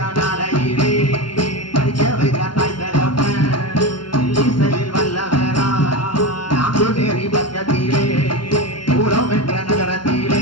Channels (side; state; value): right; late; 0.72 ms